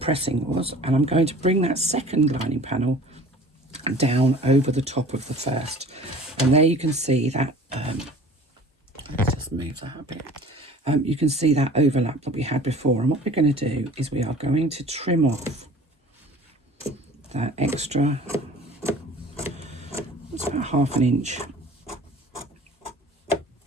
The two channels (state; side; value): normal; both; correlation 0.45